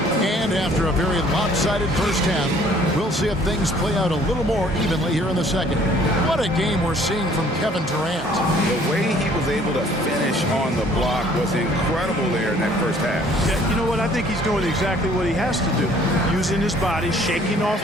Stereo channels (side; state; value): both; normal; correlation 0.57